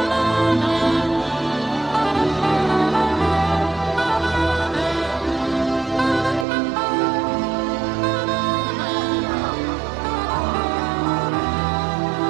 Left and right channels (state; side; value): drops out; left; at 6.5 s